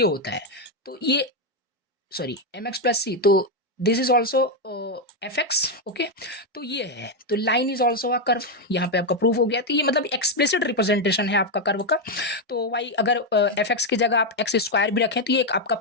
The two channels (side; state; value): both; normal; correlation 0.04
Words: होता है, तो ये sorry M x plus C, तो this is also F x, okay. तो ये है, तो line is also a curve, यहाँ पे आपका प्रूफ हो गया। तो ये मतलब एक्सप्लिसिट रिप्रेजेंटेशन है आपका कर्व का। तो वाई अगर एफ एक्स की जगह आप एक्स स्क्वायर भी रखें तो ये एक आपका